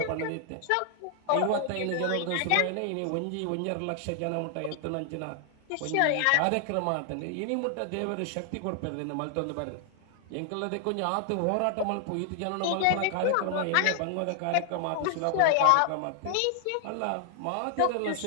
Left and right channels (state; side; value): different; both; correlation 0.00